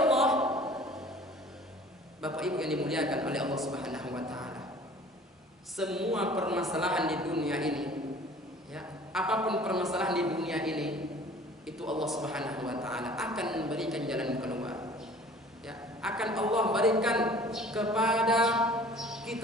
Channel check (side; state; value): both; normal; correlation 0.48